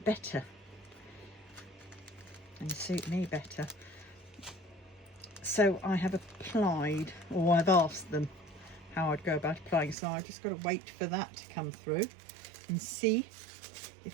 better and suit me better. So I have applied, or I've asked them how I'd go about applying. So I've just got to wait for that to come through and see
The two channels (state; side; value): drops out; left; at 10.0 s